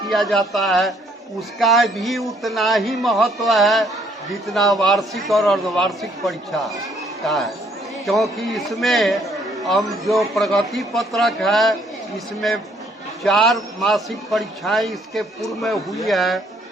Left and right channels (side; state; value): both; normal; correlation 0.66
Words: किया जाता है। उसका भी उतना ही महत्व है जितना वार्षिक और अर्धवार्षिक परीक्षा का है, क्योंकि इसमें हम जो प्रगति पत्रक है इसमें 4 मासिक परीक्षाएं इसके पूर्व में हुई है।